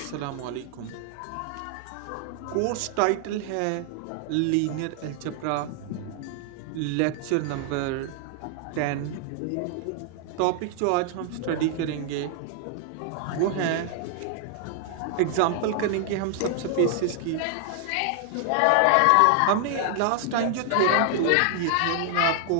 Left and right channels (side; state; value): both; different; correlation 0.00